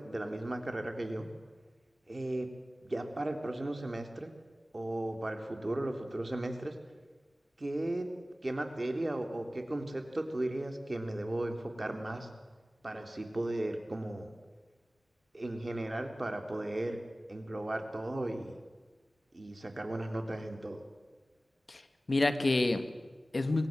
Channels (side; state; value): both; normal; correlation 0.97